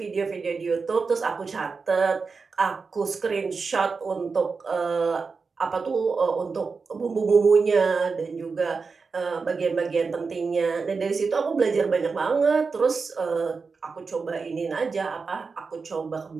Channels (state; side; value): quieter; left; 4.8 dB